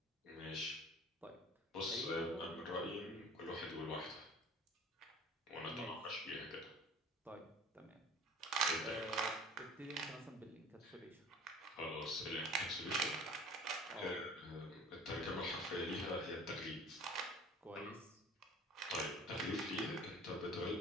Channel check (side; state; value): both; normal; correlation 0.46